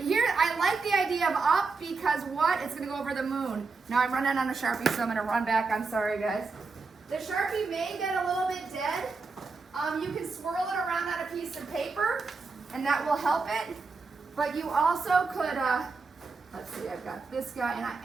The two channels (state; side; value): quieter; left; 4.3 dB